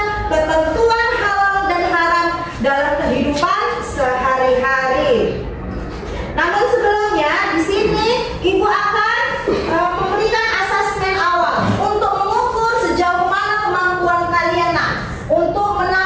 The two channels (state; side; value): identical; both; correlation 1.00